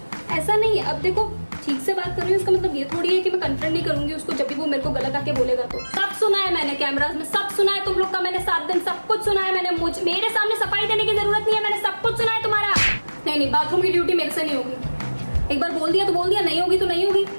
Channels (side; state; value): both; inverted; correlation -1.00